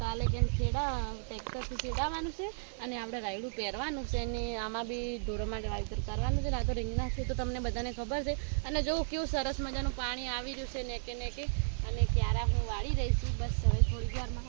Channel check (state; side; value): silent; left; digital silence